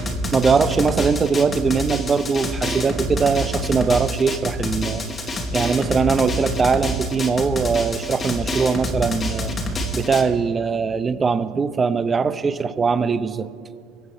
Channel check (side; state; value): left; quieter; 3.9 dB